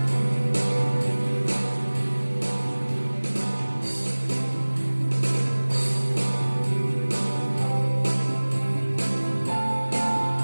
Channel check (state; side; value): inverted; both; correlation -1.00